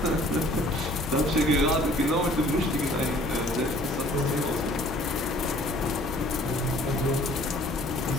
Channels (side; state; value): both; normal; correlation 0.54